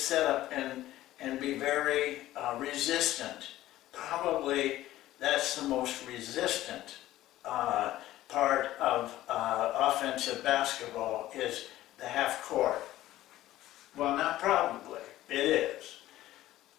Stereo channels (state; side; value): quieter; right; 14.9 dB